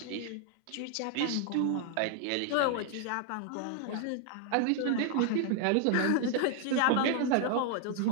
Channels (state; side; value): different; both; correlation 0.00